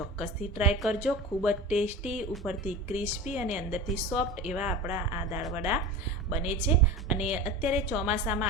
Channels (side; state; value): both; normal; correlation 0.31